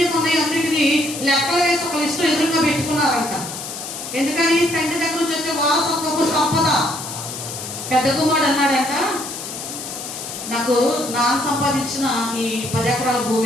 ఉన్నాయో అన్నిటినీ లెక్కలు వేసి ఒక లిస్టు ఎదురుగా పెట్టుకున్నారంట. ఎందుకని? తండ్రి దగ్గర నుంచి వచ్చే వారసత్వపు సంపద. పెద్ద కుమారుడు అన్నాడంట, నాకు నాన్న సంపాదించిన ఈ 10 ఎకరాల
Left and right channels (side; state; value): left; noise; hiss, 8 dB below the sound